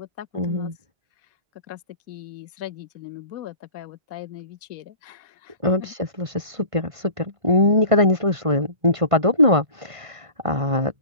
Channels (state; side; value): late; left; 1.5 ms